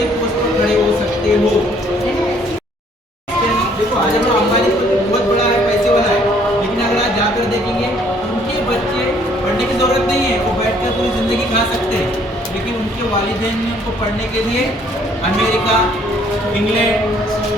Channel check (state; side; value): normal; both; correlation 0.62